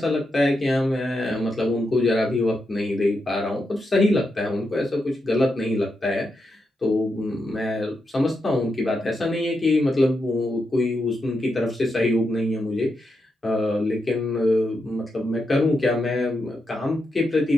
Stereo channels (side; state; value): both; normal; correlation 0.85